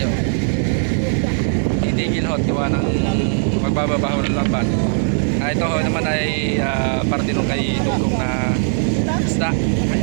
Titigil ho, tiwa ng magbababaho ng lambat. Ito ho naman ay parte nung kay Dugong na isda.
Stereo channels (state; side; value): silent; left; 58 dB below the other